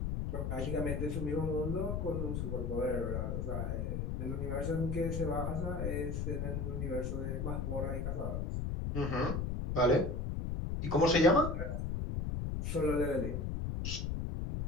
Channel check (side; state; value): left; noise; rumble, 1 dB below the sound